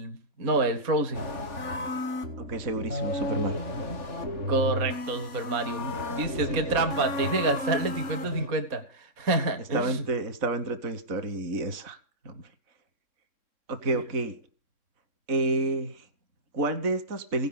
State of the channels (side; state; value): left; late; 3.6 ms